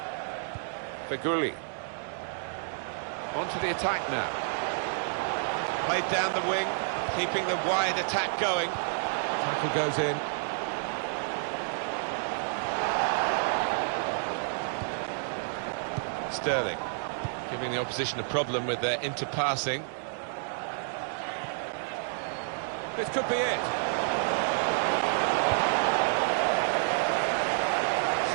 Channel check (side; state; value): left; silent; digital silence